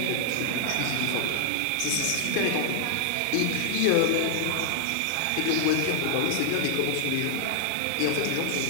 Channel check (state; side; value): different; both; correlation 0.00